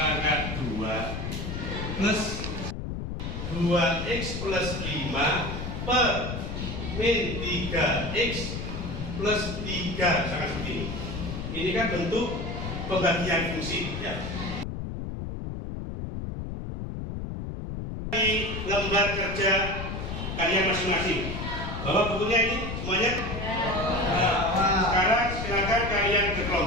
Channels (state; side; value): noise; left; rumble, 5 dB below the sound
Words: 2 plus 2x plus 5 per min 3x plus 3, sangat seperti ini. Ini kan bentuk pembagian fungsi ya. Di lembar kerja kalian masing-masing, bawa bukunya ini semuanya. Nah, sekarang silakan kalian ke